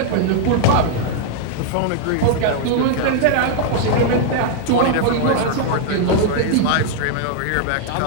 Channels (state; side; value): different; both; correlation 0.00